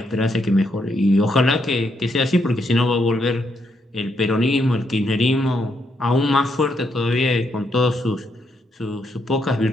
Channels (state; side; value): normal; both; correlation 0.77